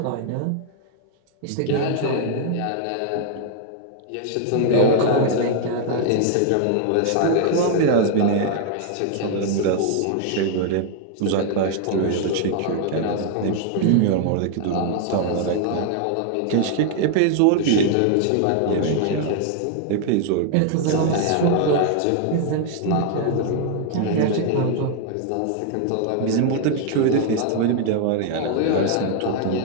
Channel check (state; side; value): different; both; correlation 0.00